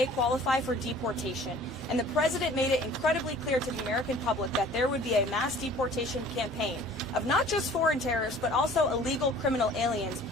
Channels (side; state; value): both; normal; correlation 0.49